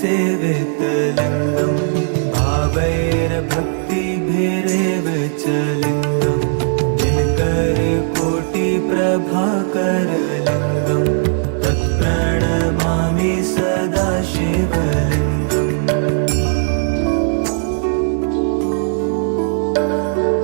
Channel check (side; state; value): left; silent; 62 dB below the other